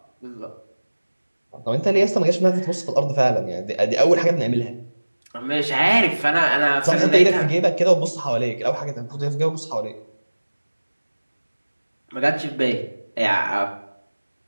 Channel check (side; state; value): both; inverted; correlation -1.00